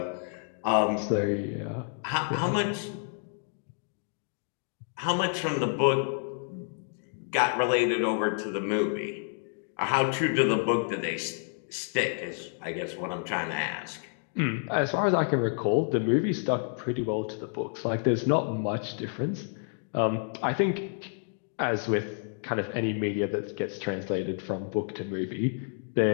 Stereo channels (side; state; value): right; silent; 58 dB below the other